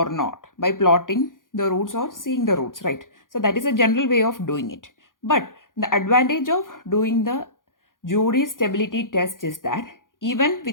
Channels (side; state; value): right; late; 0.89 ms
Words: not by plotting the roots or seeing the roots, right? So that is a general way of doing it. But the advantage of doing the jury stability test is that even